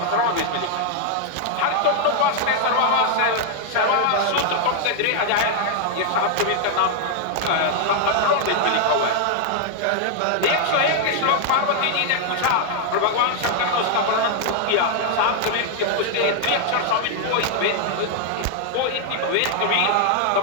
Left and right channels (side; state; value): both; different; correlation 0.00